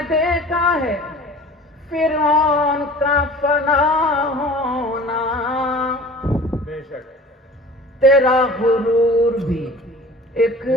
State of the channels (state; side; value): normal; both; correlation 0.44